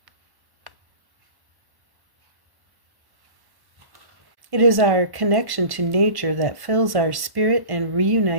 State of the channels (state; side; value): late; left; 1.1 ms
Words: It is our connection to nature that fills our spirit and